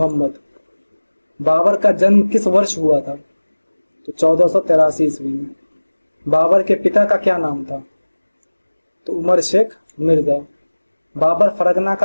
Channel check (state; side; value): inverted; both; correlation -1.00